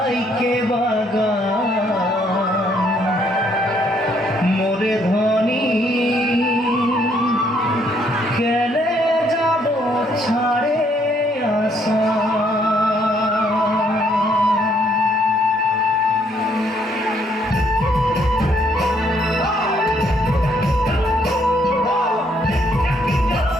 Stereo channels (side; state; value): both; normal; correlation 0.69